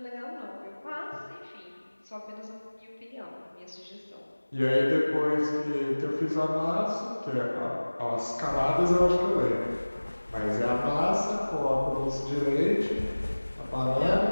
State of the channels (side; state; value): both; inverted; correlation -1.00